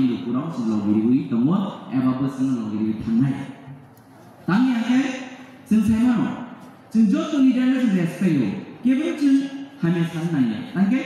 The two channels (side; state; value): both; identical; correlation 1.00